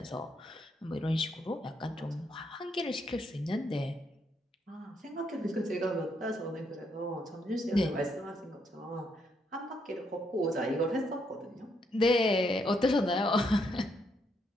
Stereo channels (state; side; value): normal; both; correlation 0.75